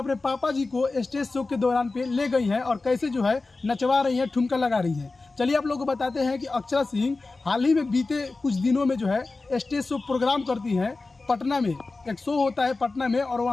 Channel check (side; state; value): right; quieter; 3.6 dB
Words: पापा जी को स्टेज शो के दौरान पे ले गई हैं और कैसे जो है नचवा रही हैं, ठुमका लगा रही हैं। चलिए आप लोगों को बताते हैं कि अक्षरा सिंह हाल ही में बीते कुछ दिनों में जो है स्टेज शो प्रोग्राम करती हैं पटना में। एक शो होता है पटना में और